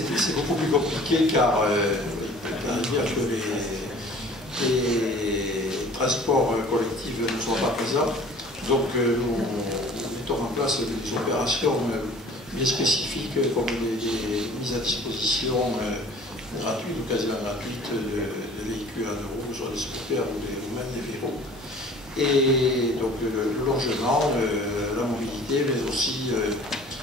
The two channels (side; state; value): both; normal; correlation 0.48